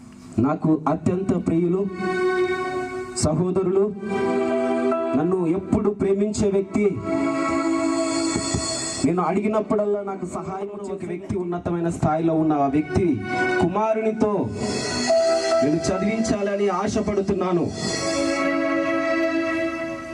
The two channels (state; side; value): identical; both; correlation 1.00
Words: నాకు అత్యంత ప్రియులు, సహోదరులు, నన్ను ఎప్పుడు ప్రేమించే వ్యక్తి, నేను అడిగినప్పుడల్లా నాకు సహాయం చేసే వ్యక్తి, ఉన్నతమైన స్థాయిలో ఉన్న ఆ వ్యక్తి కుమారునితో నేను చదివించాలని ఆశపడుతున్నాను.